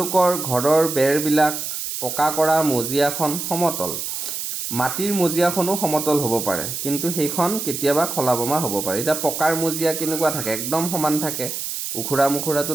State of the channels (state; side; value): noise; right; hiss, 5 dB below the sound